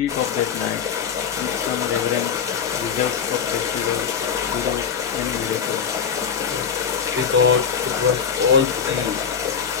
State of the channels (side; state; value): right; quieter; 7.0 dB